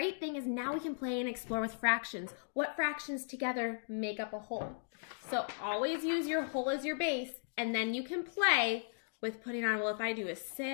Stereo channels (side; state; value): right; silent; digital silence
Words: thing is now we can play and explore with fractions. What fractions together make up a whole? So always use your whole as your base, and then you can play with putting on, well, if I do a